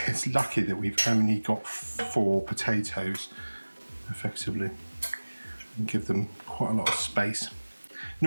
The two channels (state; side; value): inverted; both; correlation -1.00